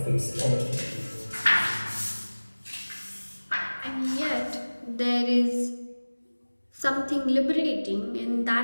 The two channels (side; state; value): both; inverted; correlation -1.00